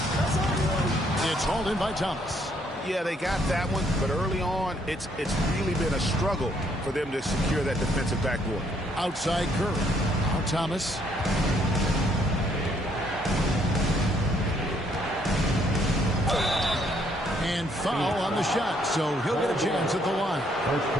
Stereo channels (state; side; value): normal; both; correlation 0.68